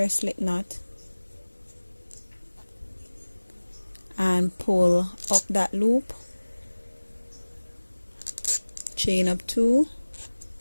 slip knot and pull up that loop, chain up 2,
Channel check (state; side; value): inverted; both; correlation -1.00